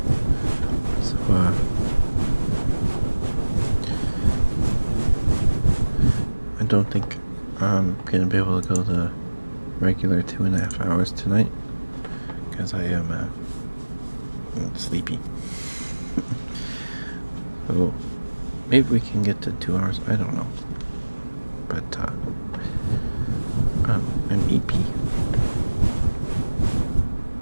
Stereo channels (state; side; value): inverted; both; correlation -1.00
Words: So, I don't think I'm gonna be able to go the regular 2.5 hours tonight because I am sleepy. So maybe we can get to 2 hours. I don't know, but I'm EP.